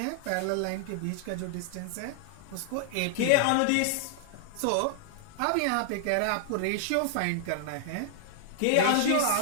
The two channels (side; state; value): both; different; correlation -0.01